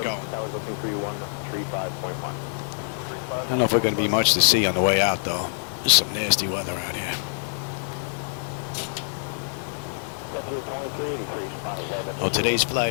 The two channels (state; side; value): silent; right; 61 dB below the other